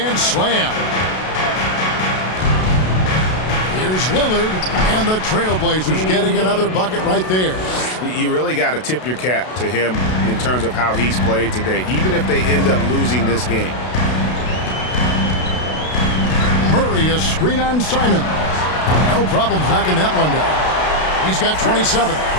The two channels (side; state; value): right; late; 32 ms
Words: slam. Here's Lillard, and the Trailblazers getting another bucket right there. You really got to tip your cap to him in terms of how he's played today, even if they end up losing this game. Murray, a screen on Simon. No problems knocking that one down. He's got 27.